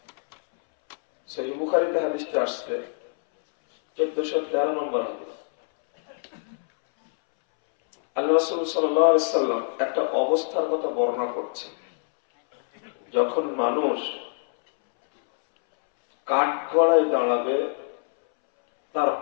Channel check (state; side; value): silent; right; 62 dB below the other